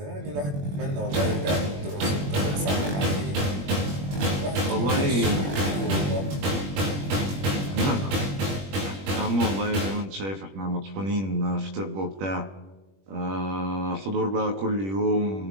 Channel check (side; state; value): left; late; 21 ms